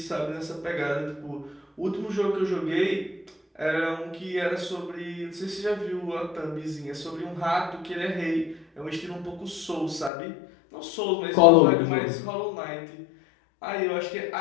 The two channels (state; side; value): drops out; right; at 10.1 s